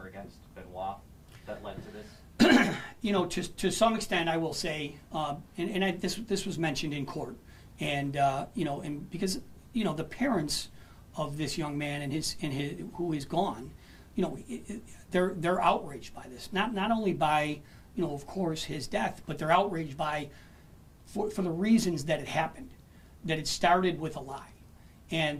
against Benoit that led to this? To some extent, I will say, this was mentioned in court, and and because the parents of this young man and his who is gone, they're outraged by this. Not only by, of course, his death, but they're outraged by for the reasons that it happened, that it started with a lie, and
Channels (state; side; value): identical; both; correlation 1.00